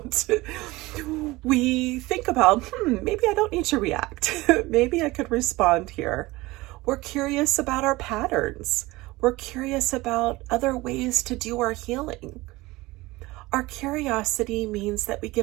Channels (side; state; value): left; quieter; 20.4 dB